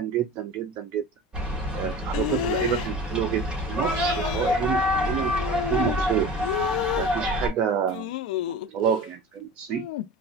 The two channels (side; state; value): both; normal; correlation 0.35